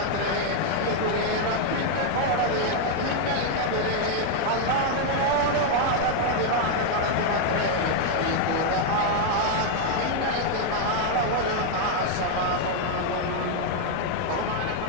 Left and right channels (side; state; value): both; different; correlation 0.00